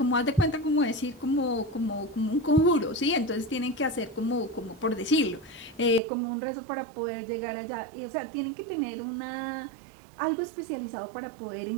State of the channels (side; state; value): left; drops out; at 6.0 s